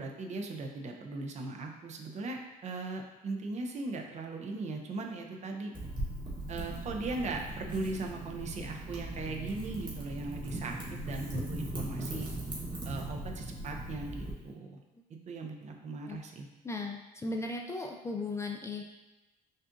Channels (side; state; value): both; normal; correlation 0.61